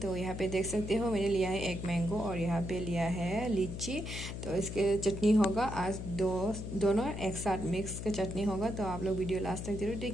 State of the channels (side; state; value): left; noise; hum, 7 dB below the sound